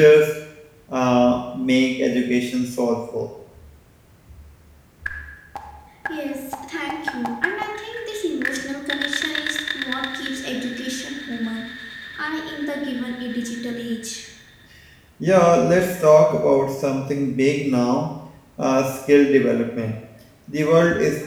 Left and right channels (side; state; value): both; identical; correlation 1.00